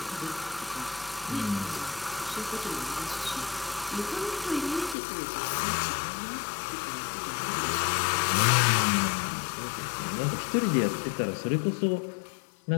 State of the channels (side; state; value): right; drops out; at 5.0 s